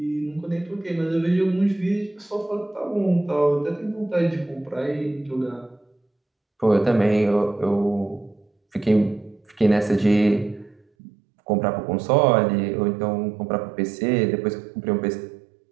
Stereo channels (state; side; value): drops out; left; at 10.8 s